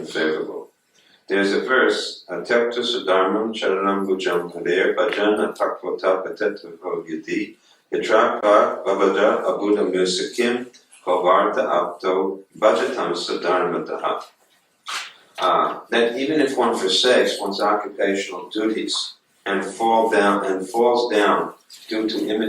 There's a verse, Tyakta Sudharmam Charanam Bhujam Haver Bhajana Takvota Patetavo Yadi Yatrapa Vavada Abuddha Musakim Kovarta Apto Bhajatam Sudharmataha. That even if one forsakes one's occupational duties and falls down due to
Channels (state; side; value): identical; both; correlation 1.00